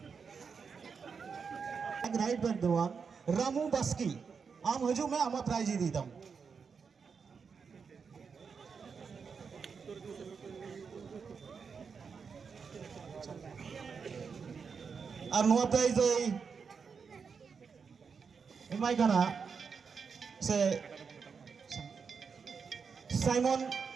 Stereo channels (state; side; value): quieter; left; 5.8 dB